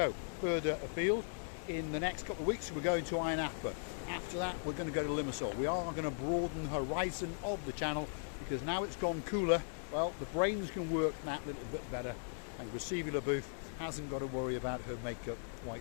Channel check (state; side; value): silent; right; digital silence